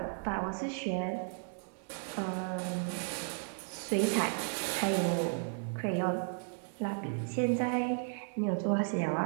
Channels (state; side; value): silent; left; 55 dB below the other